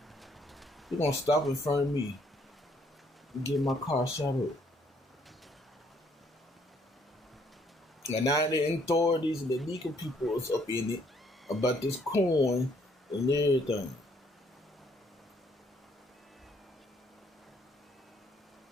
You're gonna stop in front of me and get my car shot up. And now the authorities and the legal people is up in it about this coin and everything.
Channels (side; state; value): both; normal; correlation 0.66